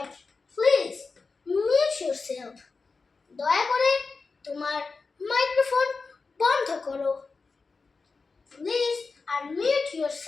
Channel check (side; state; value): right; quieter; 4.3 dB